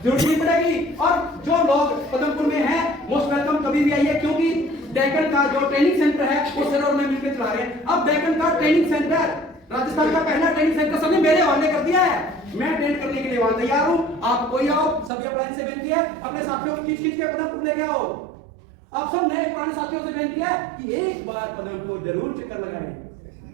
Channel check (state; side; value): drops out; left; at 15.1 s